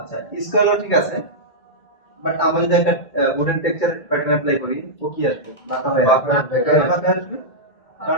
স্কোয়ারও ঠিক আছে, বাট আমরা যদি একটা উডেন টেক্সচার প্যাটার্ন অ্যাপ্লাই করি ও কি আসবে? বাঁকা হয়ে আসবে। কেন বাঁকা আসবে?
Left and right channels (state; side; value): late; right; 2.3 ms